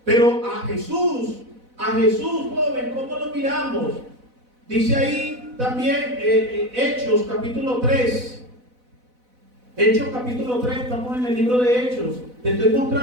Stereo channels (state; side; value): late; left; 4.0 ms